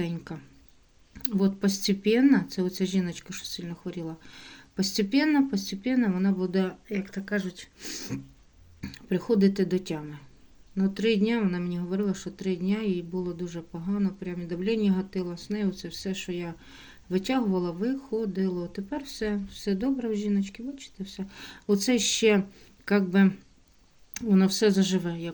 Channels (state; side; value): identical; both; correlation 1.00